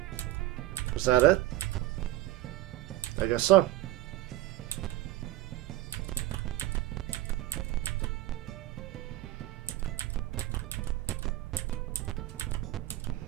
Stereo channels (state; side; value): quieter; left; 15.2 dB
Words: Was that it? I guess so.